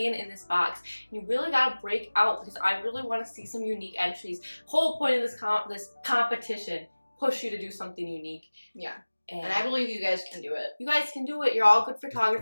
in this box. You really gotta break out because I really want to see some unique entries. Whole point of this competition, push you to do something unique. Yeah. And I believe you guys can do it. You guys can do it. You're all good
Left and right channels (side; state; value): both; inverted; correlation -1.00